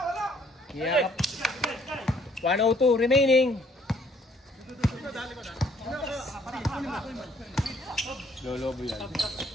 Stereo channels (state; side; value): normal; both; correlation 0.63